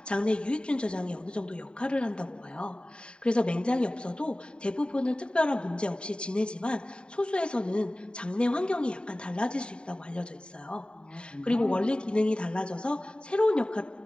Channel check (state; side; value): late; right; 0.050 ms